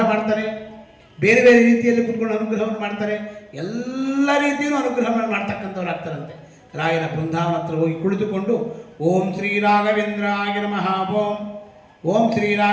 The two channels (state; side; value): identical; both; correlation 1.00